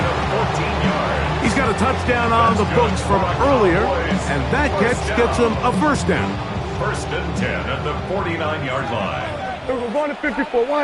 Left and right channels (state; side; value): identical; both; correlation 1.00